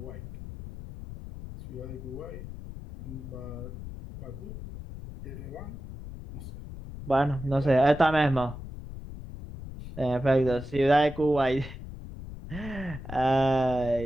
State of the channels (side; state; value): left; noise; rumble, 11 dB below the sound